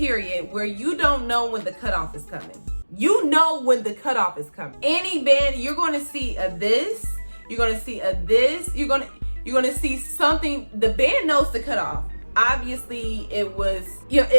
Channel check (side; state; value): both; inverted; correlation -1.00